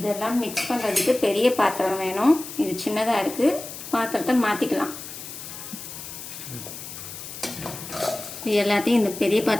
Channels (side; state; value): left; noise; hiss, 11 dB below the sound